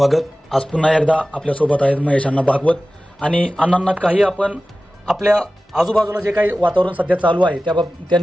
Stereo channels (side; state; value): both; normal; correlation 0.96